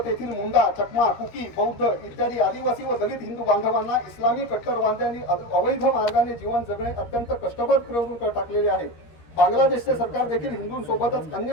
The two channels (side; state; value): right; late; 13 ms